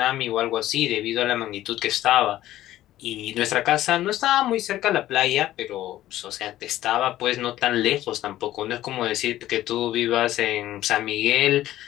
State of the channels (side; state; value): right; quieter; 14.2 dB